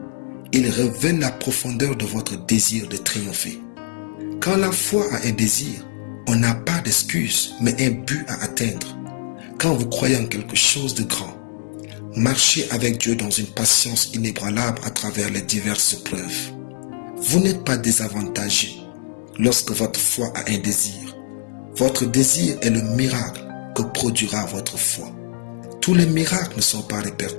Ils révèlent la profondeur de votre désir de triompher. Quand la foi a un désir, on n'a pas d'excuse, mais un but à atteindre. Quand vous croyez en quelque chose de grand, marchez avec Dieu dans une patience inébranlable à travers les diverses preuves. Vous n'êtes pas désavantagé lorsque votre foi a un désir. Votre désir est le miracle que produira votre foi. Tous les miracles ne sont pas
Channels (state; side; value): silent; right; digital silence